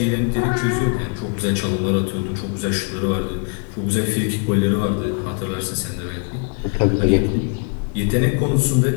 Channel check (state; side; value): quieter; right; 38.9 dB